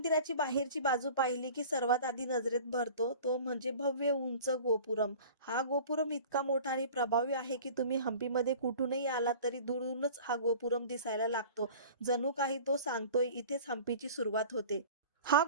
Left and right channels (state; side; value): inverted; both; correlation -0.42